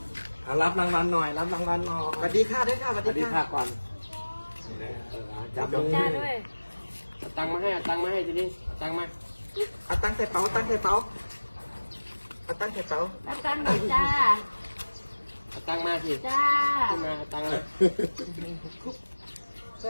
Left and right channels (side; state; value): both; inverted; correlation -1.00